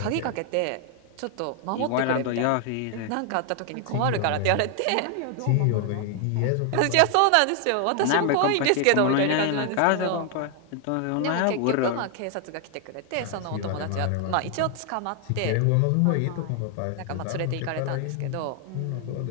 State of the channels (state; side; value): different; both; correlation 0.00